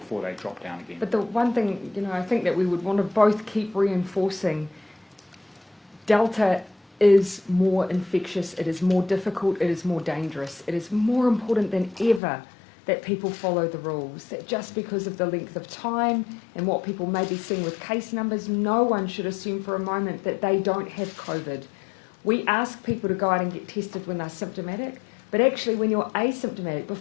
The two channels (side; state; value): right; drops out; at 12.2 s